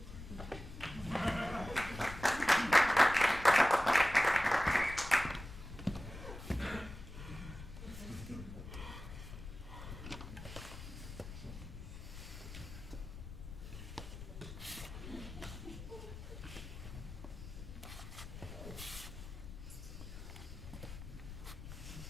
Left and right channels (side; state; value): left; noise; rumble, 11 dB below the sound